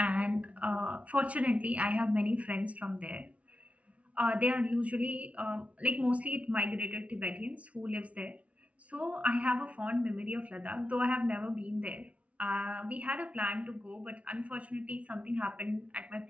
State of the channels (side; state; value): left; late; 0.065 ms